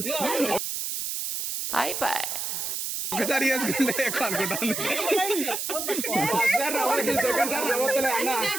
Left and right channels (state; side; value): noise; right; hiss, 3 dB below the sound